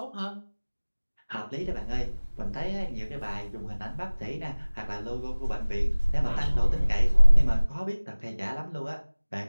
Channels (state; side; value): inverted; both; correlation -1.00